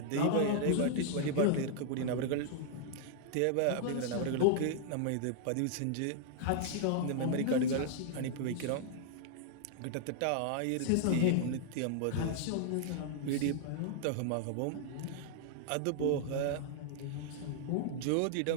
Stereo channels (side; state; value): both; different; correlation 0.00